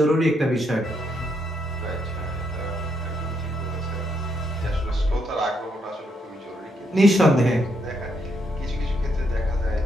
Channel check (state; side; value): normal; both; correlation 0.76